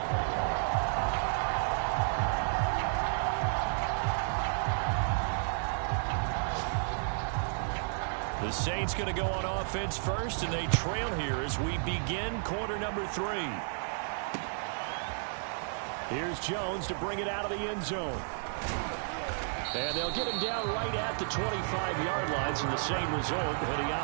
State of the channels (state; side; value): silent; left; digital silence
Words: The Saints going to go on offense first, and they trail here as we begin quarter number 3. Here's Jones to bring it out of the end zone. And they'll get him down right at the 25-yard line, so the same result, and he